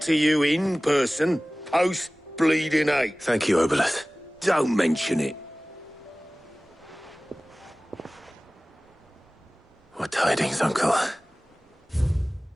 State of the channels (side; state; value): both; normal; correlation 0.98